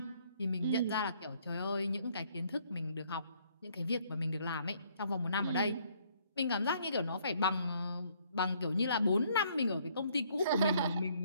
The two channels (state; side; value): inverted; both; correlation -0.65